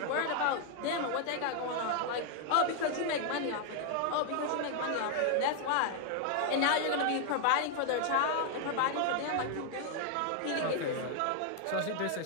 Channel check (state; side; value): different; both; correlation 0.00